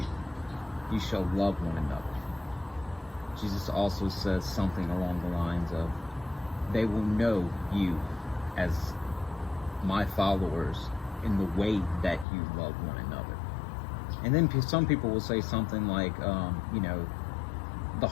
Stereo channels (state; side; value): drops out; right; at 12.2 s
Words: You shall love one another. Jesus also says something along the lines of, they will know you as my followers in the way that you love one another. And then some people will say something like, the